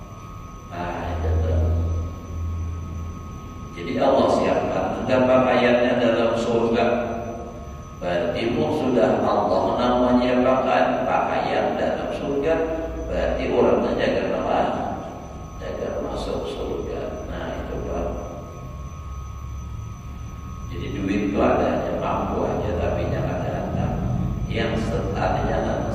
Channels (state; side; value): identical; both; correlation 1.00